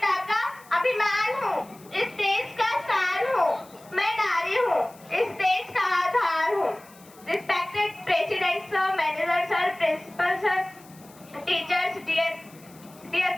का अभिमान हूँ, इस देश का शान हूँ, मैं नारी हूँ, इस देश का आधार हूँ। Respected President Sir, Manager Sir, Principal Sir, Teachers, dear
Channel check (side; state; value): left; noise; hiss, 24 dB below the sound